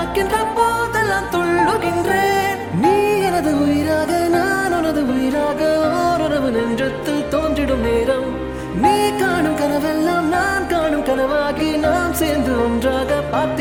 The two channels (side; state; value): both; identical; correlation 1.00